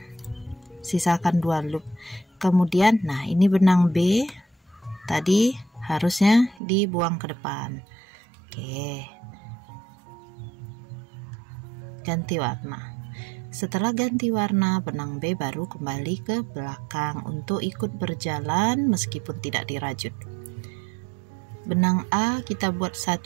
sisakan 2 loop. Kemudian nah ini benang B tadi harusnya dibuang ke depan. Oke, ganti warna. Setelah ganti warna, benang B baru kembali ke belakang untuk ikut berjalan meskipun tidak dirajut. Benang A kita buat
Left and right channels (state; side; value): drops out; left; at 6.6 s